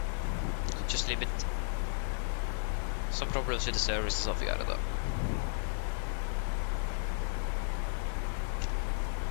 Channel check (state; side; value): silent; right; 55 dB below the other